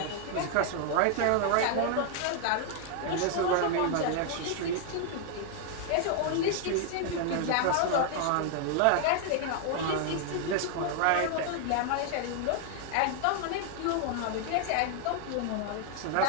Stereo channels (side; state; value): both; different; correlation 0.00